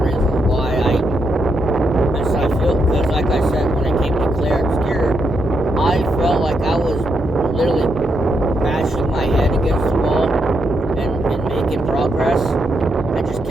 why I feel, because like I said, when it came to Clair Obscur, I felt like I was literally bashing my head against the wall and making progress. I just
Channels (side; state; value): both; normal; correlation 0.80